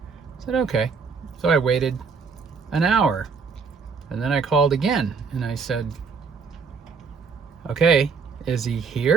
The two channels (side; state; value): left; quieter; 5.3 dB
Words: said, okay. So I waited an hour, and then I called again and I said, okay, is he